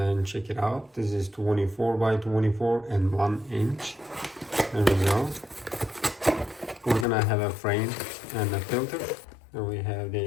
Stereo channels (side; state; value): right; drops out; at 7.1 s